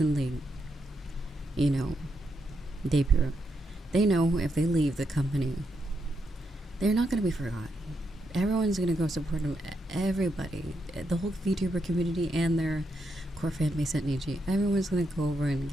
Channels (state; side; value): normal; both; correlation 0.81